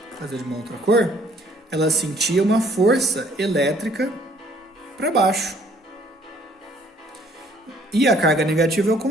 fazer de uma outra cor, ela sentia uma força elétrica para baixo. E a carga negativa é o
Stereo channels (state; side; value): normal; both; correlation 0.60